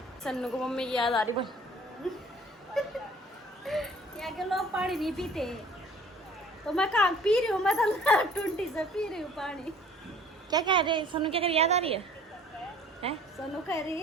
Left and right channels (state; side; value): normal; both; correlation 0.52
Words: सन्नू को मम्मी की याद आ रही, बोल। यहाँ के लोग पानी नहीं पीते, तो मैं कहाँ पी रही हूँ, मैं तो टुंटी से पी रही हूँ पानी। क्या कह रहे सन्नू, क्या कर याद आ रही है? हैं? सोनू कह रही